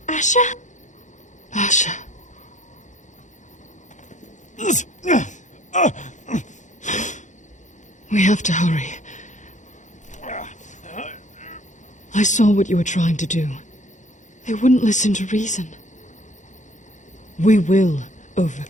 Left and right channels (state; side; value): late; right; 0.35 ms